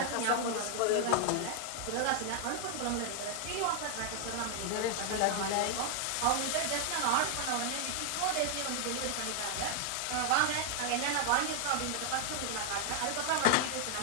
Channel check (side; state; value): both; different; correlation 0.00